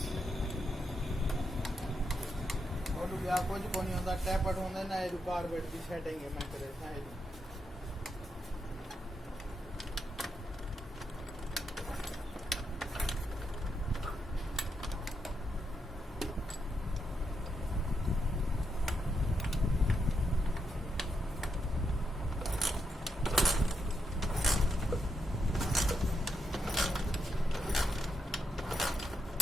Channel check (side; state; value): both; normal; correlation 0.82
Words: ਉਹ ਵੀ ਆ ਕੁਝ ਨਹੀਂ ਹੁੰਦਾ ਟੈਪਟ ਹੁੰਦਾ ਨਾ ਇਹ ਕਾਰਬੇਟ ਦੀ ਸੈਟਿੰਗ ਹੈ ਮੈਂ ਕਰੇ ਸਾਈਡ